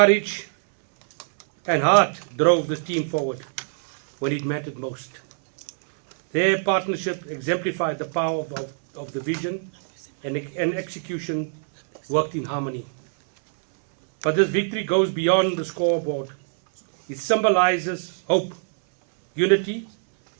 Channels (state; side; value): silent; left; 63 dB below the other